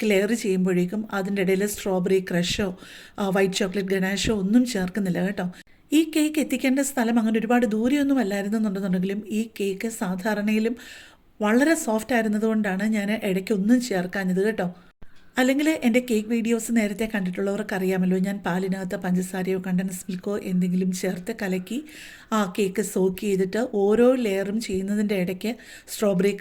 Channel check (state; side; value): identical; both; correlation 1.00